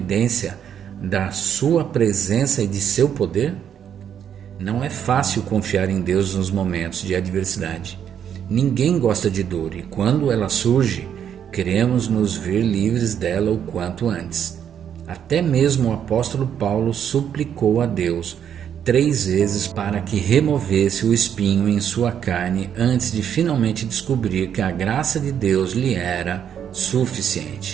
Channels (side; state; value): left; quieter; 8.9 dB